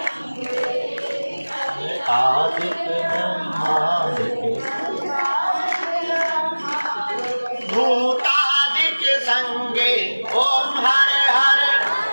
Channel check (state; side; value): inverted; both; correlation -1.00